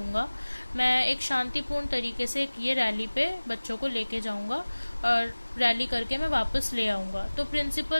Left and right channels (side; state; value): both; inverted; correlation -1.00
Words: मैं एक शांतिपूर्ण तरीके से ये रैली पे बच्चों को लेके जाऊंगा और रैली करके मैं वापस ले आऊंगा। तो